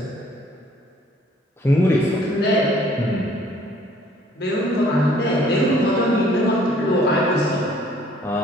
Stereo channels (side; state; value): both; normal; correlation 0.59